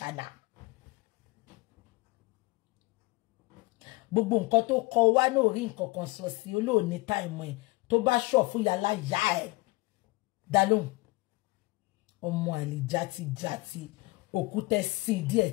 gbogbo nǹkan tó kọ wá náà rí nǹkan kan sọ sí olóòní táìmù ẹ̀ tó bá ṣọ̀ fún yàrá yá ẹ̀ dá lóhùn ọmọ àlè játijàti òkúta sí díẹ̀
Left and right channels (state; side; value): quieter; right; 23.0 dB